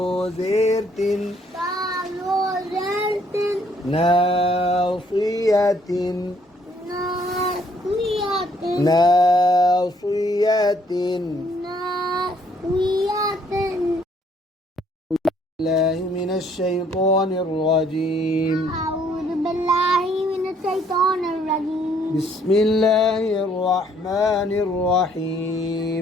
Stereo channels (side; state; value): both; normal; correlation 0.65